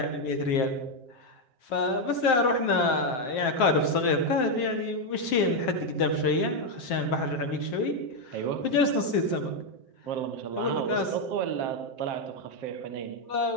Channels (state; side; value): late; right; 8.0 ms